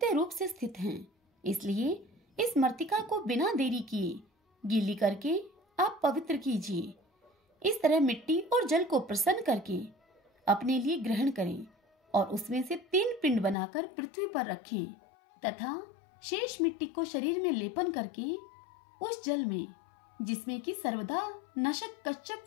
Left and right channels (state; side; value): drops out; right; at 13.6 s